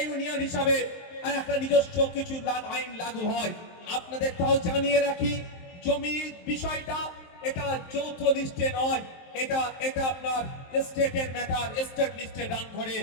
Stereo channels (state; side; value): late; right; 23 ms